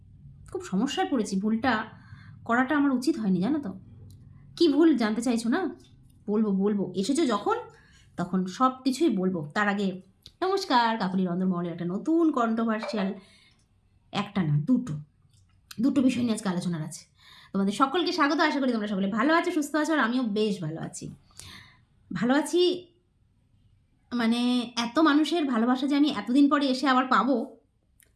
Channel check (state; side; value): identical; both; correlation 1.00